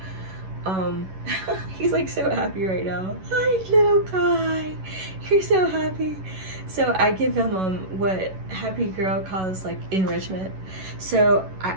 he's like so happy right now. Hi little guy, you're so happy. So I give him what Happy Girl calls like enrichment. So I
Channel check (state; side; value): late; left; 11 ms